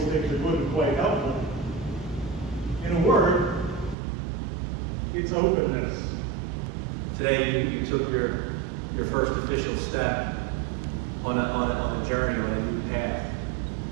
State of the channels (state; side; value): drops out; left; at 4.0 s